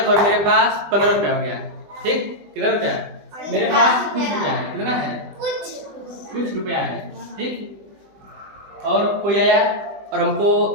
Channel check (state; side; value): late; left; 20 ms